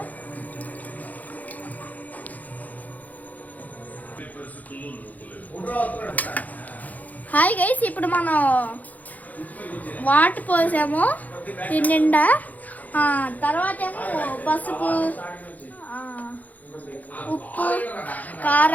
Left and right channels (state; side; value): late; right; 0.079 ms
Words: హాయ్ గైస్, ఇప్పుడు మనం వాటర్ పోసాము దీని నిండా. తర్వాత ఏమో పసుపు, ఉప్పు,